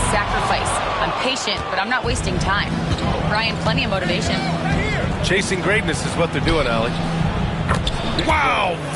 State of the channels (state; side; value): identical; both; correlation 1.00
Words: sacrifice. I'm patient, but I'm not wasting time. Brian, plenty of motivation. Chasing greatness is what they're doing, Allie. Wow,